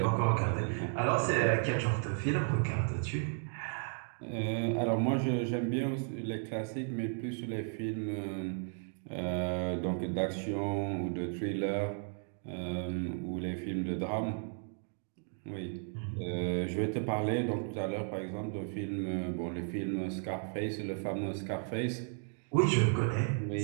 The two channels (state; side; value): silent; left; 55 dB below the other